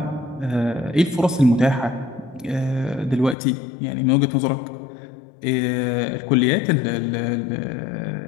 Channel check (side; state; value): right; drops out; at 3.4 s